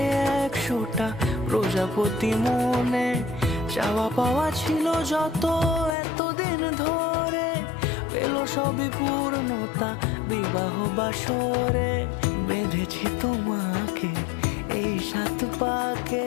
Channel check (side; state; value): right; drops out; at 6.0 s